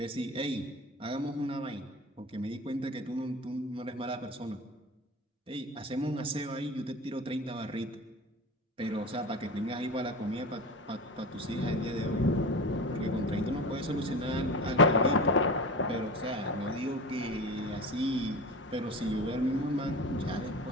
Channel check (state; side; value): normal; both; correlation 0.31